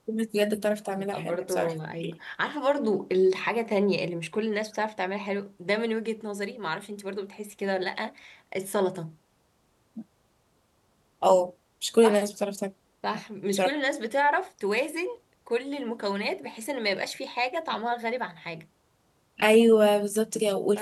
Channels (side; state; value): both; identical; correlation 1.00